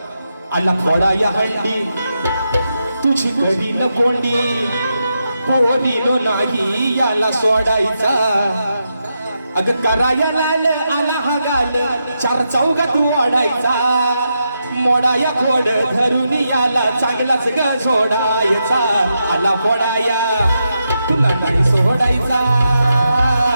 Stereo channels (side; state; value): both; inverted; correlation -0.85